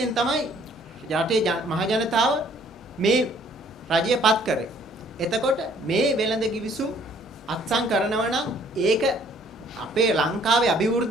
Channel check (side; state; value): both; normal; correlation 0.60